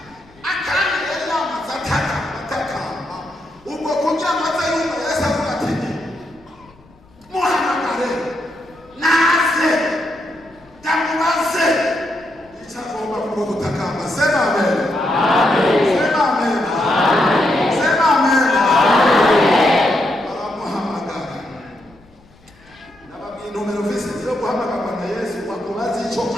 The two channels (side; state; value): left; noise; rumble, 28 dB below the sound